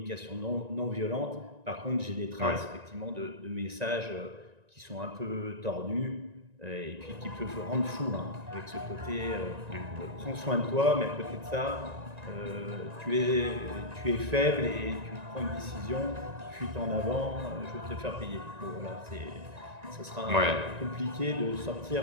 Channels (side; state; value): left; late; 1.9 ms